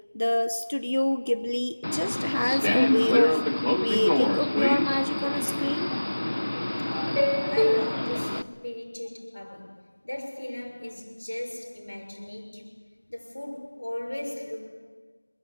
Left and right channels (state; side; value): inverted; both; correlation -1.00